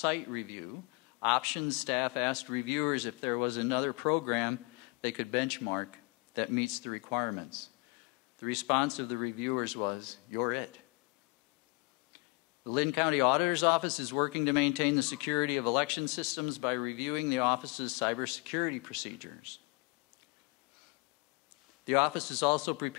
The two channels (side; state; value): right; quieter; 28.5 dB